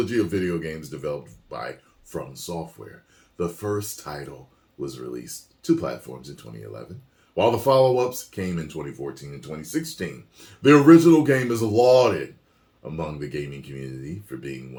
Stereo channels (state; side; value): identical; both; correlation 1.00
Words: of video games developed by From Software. The first title was released to platforms in 2011, while the follow-ups came in 2014 and 2016. The original game is lauded among the gaming community for being